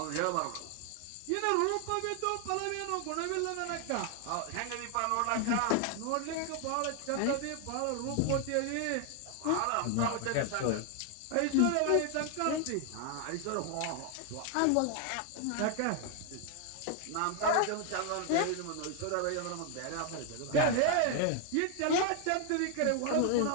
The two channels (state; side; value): different; both; correlation 0.00